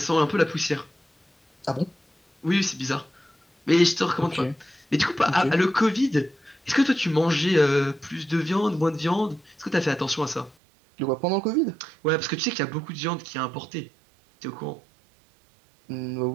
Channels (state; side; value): drops out; left; at 10.6 s